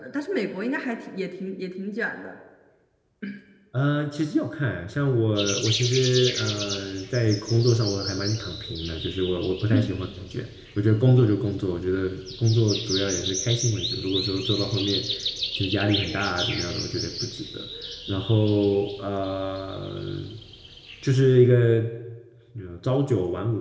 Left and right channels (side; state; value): both; identical; correlation 1.00